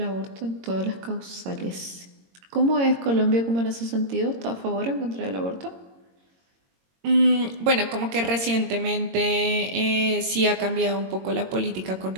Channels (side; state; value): left; late; 22 ms